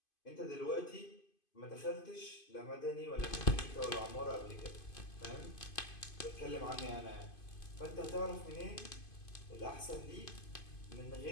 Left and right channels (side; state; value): right; late; 2.5 ms